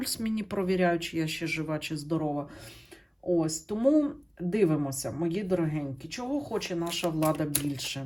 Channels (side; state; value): both; identical; correlation 1.00